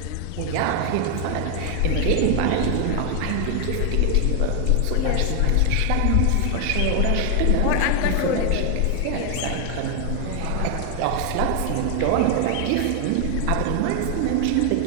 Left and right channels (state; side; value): different; both; correlation 0.00